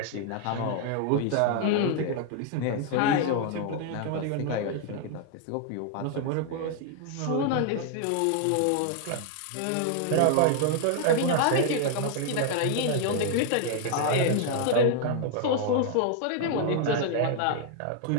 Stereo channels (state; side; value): different; both; correlation 0.00